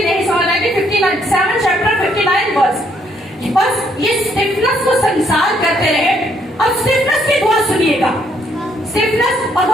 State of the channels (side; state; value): both; normal; correlation 0.70